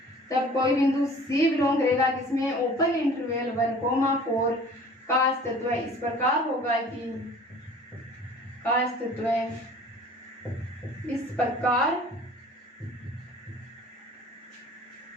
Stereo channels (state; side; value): normal; both; correlation 0.47